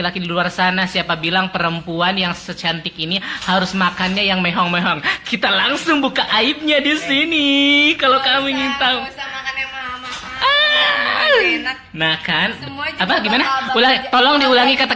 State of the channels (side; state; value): both; identical; correlation 1.00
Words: di luar sana, siapa bilang perempuan yang secantik ini harus makannya yang mehong-mehong? Kita langsung buka aibnya di sini. Kalau kamu ingin tahu. Gak usah makan yang mahal-mahal. Enak. Nah kan, Semua juga apa gimana? bakal Tolong diulangi